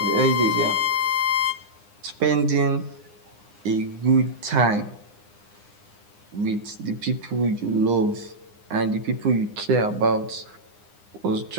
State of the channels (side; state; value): left; late; 9.8 ms